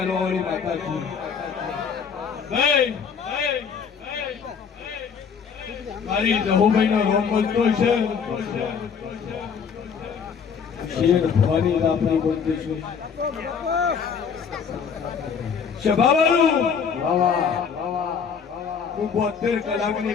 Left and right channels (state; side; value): quieter; right; 6.5 dB